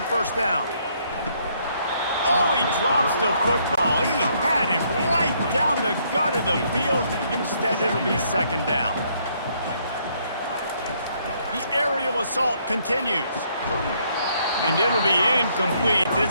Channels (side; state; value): both; inverted; correlation -0.69